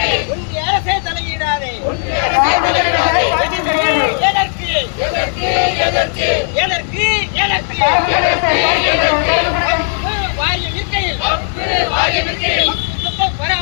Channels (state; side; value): silent; right; 60 dB below the other